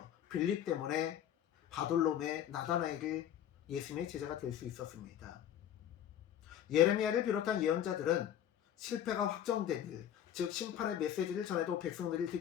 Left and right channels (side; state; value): right; quieter; 10.4 dB